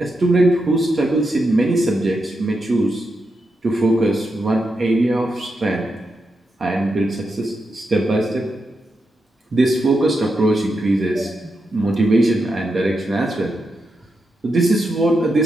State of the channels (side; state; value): both; normal; correlation 0.86